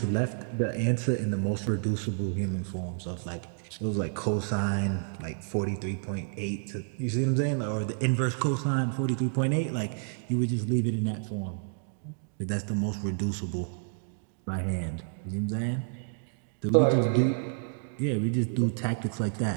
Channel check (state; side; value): silent; left; digital silence